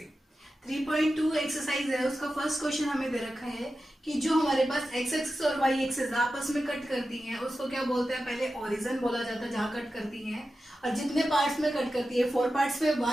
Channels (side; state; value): both; normal; correlation 0.92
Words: 3.2 एक्सरसाइज है, उसका फर्स्ट क्वेश्चन हमें दे रखा है कि जो हमारे पास एक्स एक्सिस और वाई एक्सिस आपस में कट करती हैं उसको क्या बोलते हैं, पहले ओरिजिन बोला जाता है जहां कट करती हैं, और जितने पार्ट्स में कट करती है 4 पार्ट्स में